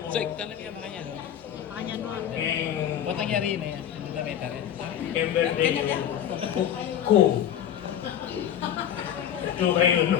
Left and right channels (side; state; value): right; quieter; 10.0 dB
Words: So, tanong niya makanya, no? Makanya, no? Ba't nangyari na yan? Namita rin. Emberday ko. Ito kayo,